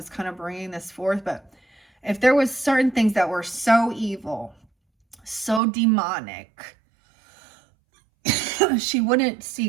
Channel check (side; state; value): left; drops out; at 5.6 s